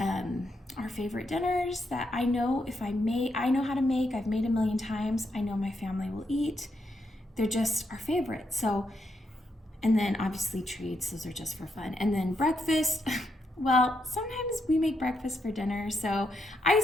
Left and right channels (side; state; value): both; normal; correlation 0.80